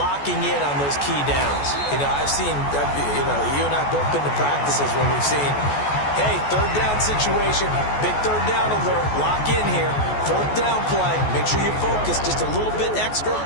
in on those key downs. I've seen, you and I both been to practices when we've seen, hey, third down situation, big third down alert, lock in here, fourth down play, make sure you focus just a little bit extra.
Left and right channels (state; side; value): late; right; 14 ms